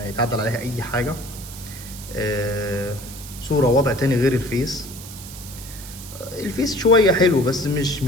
يتعدل عليها اي حاجه، صوره وضع تاني غير الفيس. الفيس شويه حلو بس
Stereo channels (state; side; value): noise; right; hiss, 14 dB below the sound